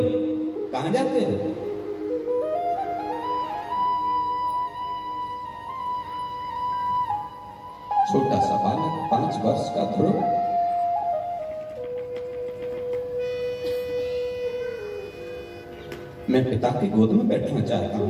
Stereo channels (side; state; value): both; identical; correlation 1.00